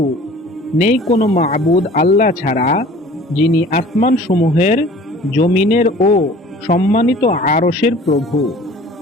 নেই কোনো মাবুদ আল্লাহ ছাড়া, যিনি আসমান সমূহের, জমিনের ও সম্মানিত আরশের প্রভু।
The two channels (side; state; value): both; normal; correlation 0.47